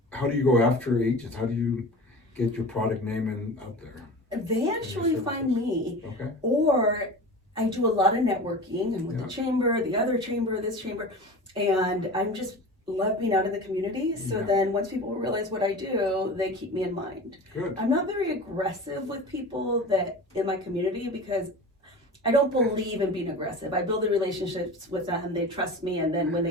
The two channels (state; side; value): normal; both; correlation 0.34